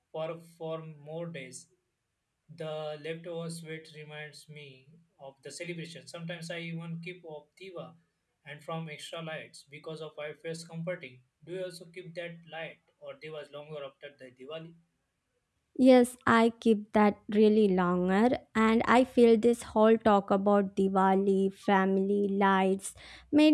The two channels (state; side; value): identical; both; correlation 1.00